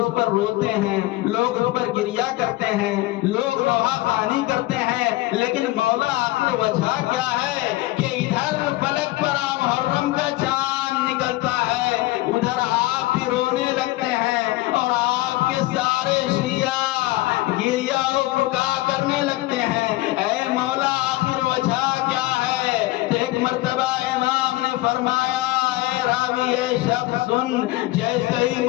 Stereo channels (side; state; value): right; quieter; 18.7 dB